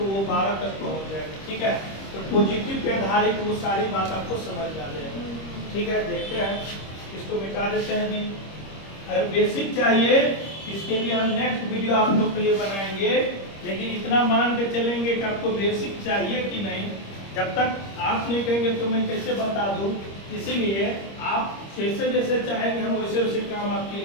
वो 12 तक पहुँच जाएगा ठीक है। तो पॉजिटिव पे आधारित वो सारी बात आपको समझ आ जाएगी ठीक है। देखते हैं इसको मिटा देते हैं जी। अगर बेसिक चाहिए इसके लिए हम नेक्स्ट वीडियो आप लोग के लिए बनाएंगे, लेकिन इतना मान के चलेंगे कि आपको बेसिक चाहिए कि नहीं। जब तक आप नहीं कहेंगे तो मैं कैसे बता दूं, इसीलिए आप जैसे जैसे चाहेंगे हम वैसे वैसे काम आपके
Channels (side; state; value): right; late; 25 ms